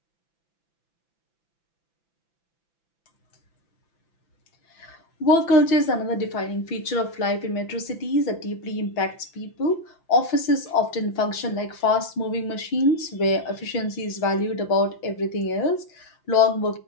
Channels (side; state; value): right; late; 5.9 ms